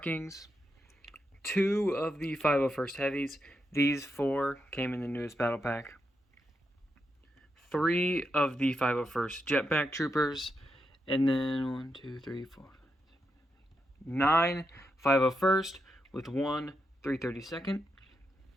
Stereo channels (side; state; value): both; normal; correlation 0.84